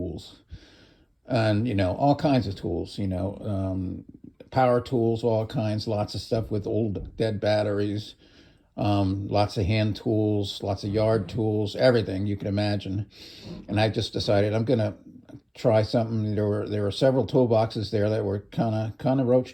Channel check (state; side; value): identical; both; correlation 1.00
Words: And, all kinds of tools, power tools, all kinds, lots of stuff with old dead batteries. Lots of hand tools, lots of yard tools, everything you can imagine. And I just decided I'm gonna try something. There were several toolboxes there that were kind of